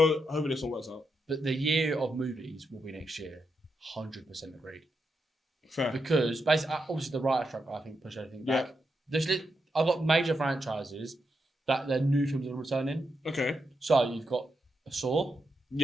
hopefully this one works out. But the year of movies will be next year. 100% agreed. Fair. Because basically, obviously, the writer strike I think pushed everything back. Yeah. I've got major franchises that their new films are returning. Okay. So you've got a Saw.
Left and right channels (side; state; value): both; normal; correlation 0.84